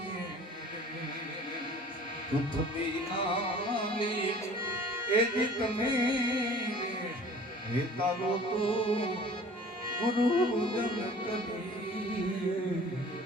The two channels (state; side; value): normal; both; correlation 0.47